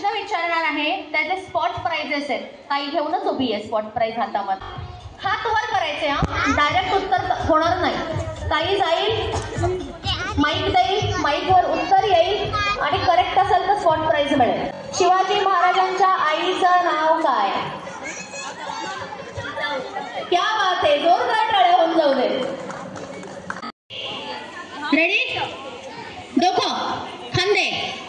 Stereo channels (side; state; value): both; identical; correlation 1.00